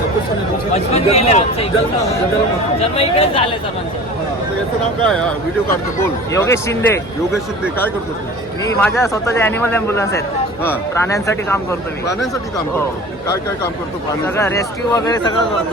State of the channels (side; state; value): both; normal; correlation 0.40